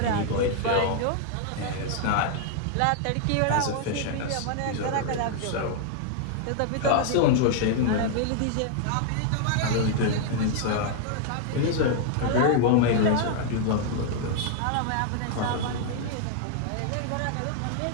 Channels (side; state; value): both; different; correlation -0.01